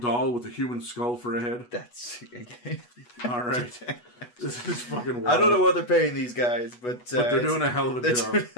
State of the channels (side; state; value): right; late; 8.2 ms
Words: with a human skull for a head. That's... All right. This is fucking wild. I don't know what they're paying these guys, but they're doing a hell of a job. They're doing